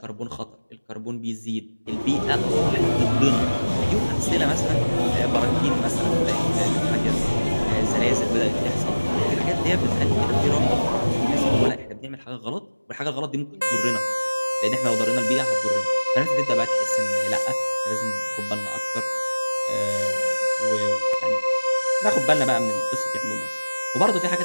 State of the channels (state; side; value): inverted; both; correlation -1.00